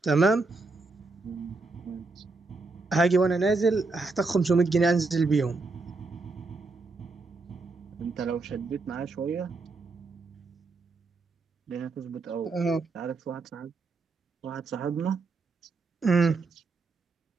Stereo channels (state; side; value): quieter; left; 3.7 dB